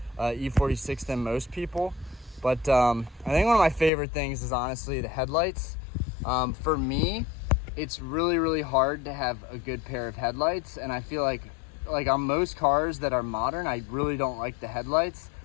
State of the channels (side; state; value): right; drops out; at 3.9 s